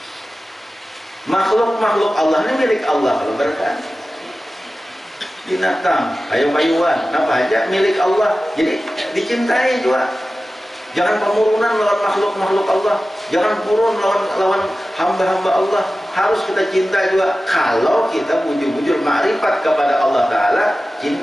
makhluk Allah ini milik Allah. Kalau berkata binatang, kayu-kayuan, apa aja milik Allah, jadi dicintai juga. Jangan pemurunan lawan makhluk-makhluk Allah, jangan purun lawan hamba-hamba Allah. Harus kita cinta juga. Kalau kita bujur-bujur ma'rifat kepada Allah Ta'ala,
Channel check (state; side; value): normal; both; correlation 0.95